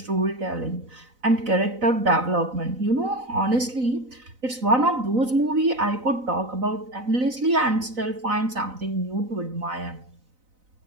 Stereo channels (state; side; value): late; left; 4.0 ms